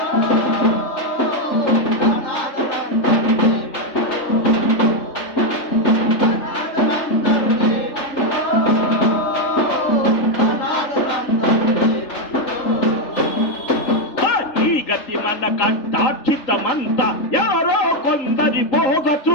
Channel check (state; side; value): late; right; 3.4 ms